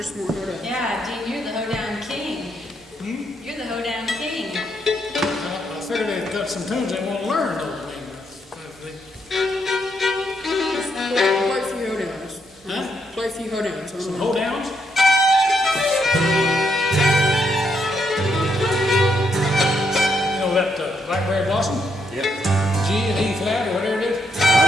more hoedown. Yeah, Dean, you're the hoedown king. You're the hoedown king. I figured they've got some tunes they want to learn, though. Play a few hoedowns. Huh? Play a few hoedowns. Some hoedowns? Blackberry Blossom? Yep. G and E flat or whatever it is?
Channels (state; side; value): normal; both; correlation 0.77